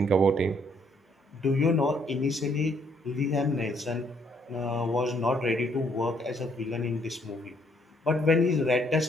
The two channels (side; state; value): both; normal; correlation 0.68